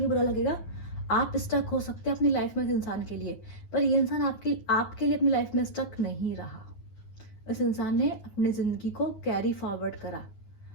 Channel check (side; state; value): right; late; 9.6 ms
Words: बुरा लगेगा, आप स्टक हो सकते हैं अपनी लाइफ में इस इंसान के लिए, पर ये इंसान आपके लिए अपनी लाइफ में स्टक नहीं रहा। इस इंसान ने अपनी ज़िंदगी को कैरी फॉरवर्ड करा,